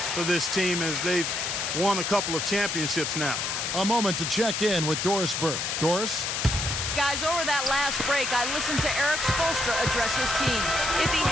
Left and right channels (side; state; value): left; noise; hiss, 1 dB below the sound